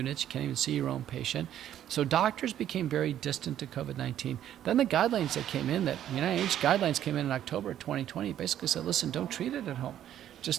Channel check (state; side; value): quieter; left; 11.1 dB